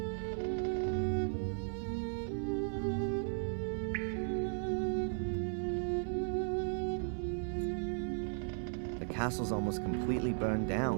The castle's almost completely burned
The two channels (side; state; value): left; silent; 54 dB below the other